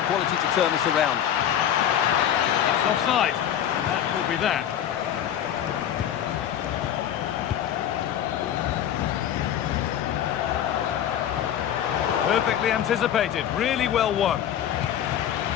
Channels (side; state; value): right; quieter; 10.2 dB